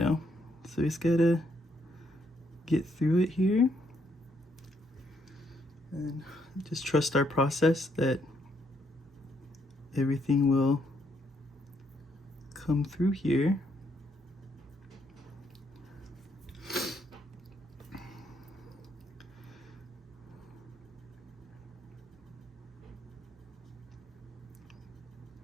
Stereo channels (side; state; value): both; normal; correlation 0.73